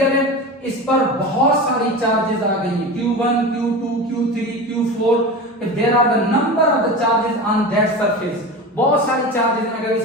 है, इस पर बहुत सारी चार्जेस आ गई हैं, Q1, Q2, Q3, Q4, there are the number of the charges on that surface. बहुत सारी चार्जेस हैं अगर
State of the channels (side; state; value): both; normal; correlation 0.28